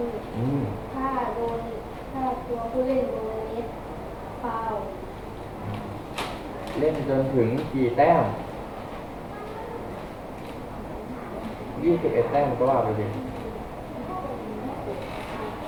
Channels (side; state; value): both; identical; correlation 1.00